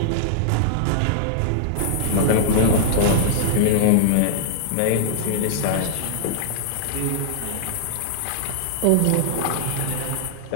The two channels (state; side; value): different; both; correlation -0.01